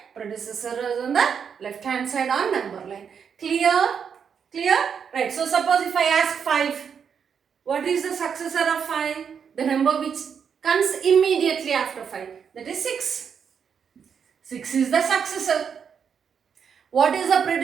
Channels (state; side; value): quieter; left; 7.1 dB